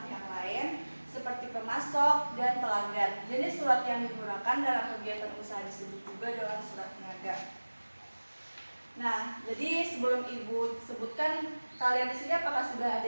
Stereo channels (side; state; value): both; inverted; correlation -1.00